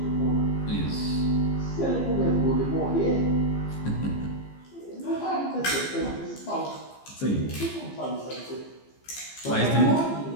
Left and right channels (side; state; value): right; late; 15 ms